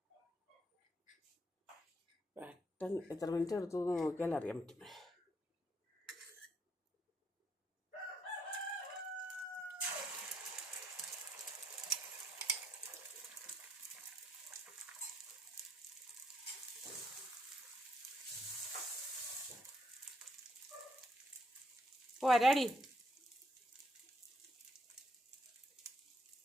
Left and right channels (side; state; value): both; normal; correlation 0.73